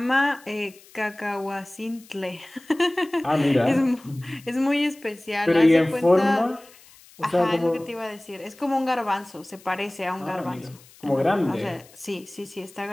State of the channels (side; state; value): left; noise; hiss, 24 dB below the sound